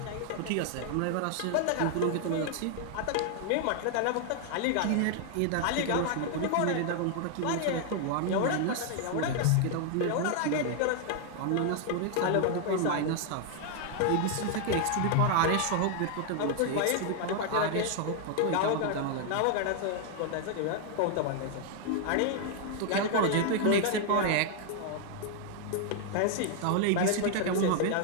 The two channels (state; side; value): different; both; correlation 0.00